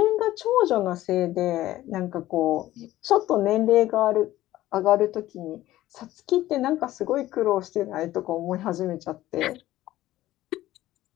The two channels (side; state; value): right; quieter; 15.2 dB